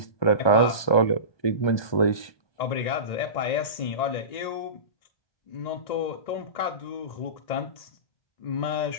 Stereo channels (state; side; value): late; right; 1.2 ms